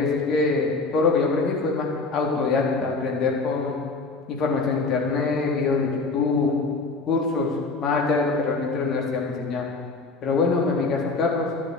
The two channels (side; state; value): right; quieter; 3.8 dB